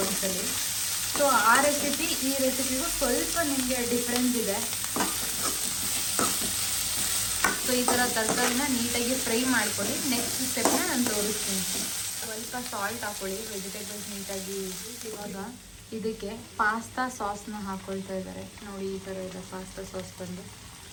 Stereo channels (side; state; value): both; identical; correlation 1.00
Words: ಒಂದ್ಸಲಿ. ಸೊ ಆ ರೆಸಿಪಿ ಈ ರೆಸಿಪಿಗೂ ಸ್ವಲ್ಪ ನಿಮಗೆ ಡಿಫ್ರೆನ್ಸ್ ಇದೆ. ಸೊ ಈ ಥರ ತರಕಾರಿನ ನೀಟಾಗಿ ಫ್ರೈ ಮಾಡ್ಕೊಳ್ಳಿ. ನೆಕ್ಸ್ಟ್ ಸ್ಟೆಪ್ನ ನಾನು ತೋರಿಸ್ತೀನಿ. ಸ್ವಲ್ಪ ಸಾಲ್ಟ್ ಹಾಕ್ಕೊಳ್ಳಿ, ವೆಜಿಟೇಬಲ್ಸ್ ನೀಟಾಗಿ. ಇವಾಗ ಇದಕ್ಕೆ ಪಾಸ್ತಾ ಸಾಸ್ನ ಹಾಕ್ಕೊಳ್ತಾ ಇದ್ದಾರೆ ನೋಡಿ. ಈ ಥರ ಇದೆ ಪಾಸ್ತಾ ಸಾಸ್ ಬಂದು.